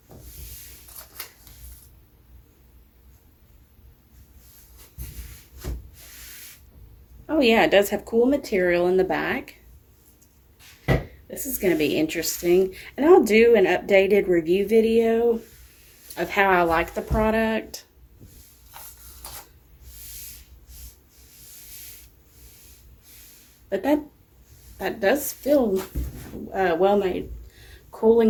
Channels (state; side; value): identical; both; correlation 1.00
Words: Oh yeah, it does have cool material in the back. This is going to be interesting. And I'll do an updated review video of how I like the product. But that does feel well-made.